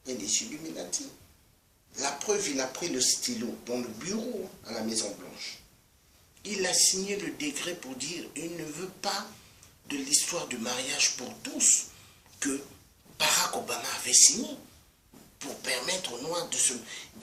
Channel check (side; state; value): both; identical; correlation 1.00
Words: et les Illuminati. La preuve, il a pris le stylo dans le bureau à la Maison-Blanche. Il a signé le décret pour dire qu'il ne veut pas de l'histoire du mariage pour tous que Barack Obama avait signé pour permettre aux Noirs,